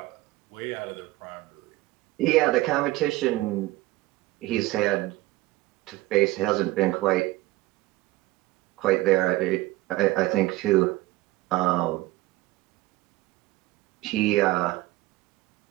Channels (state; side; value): quieter; left; 18.5 dB